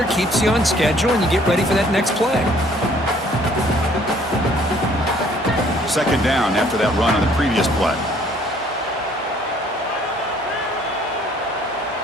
keeps you on schedule, and you get ready for that next play. 2nd down after that run on the previous play.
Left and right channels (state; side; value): normal; both; correlation 0.59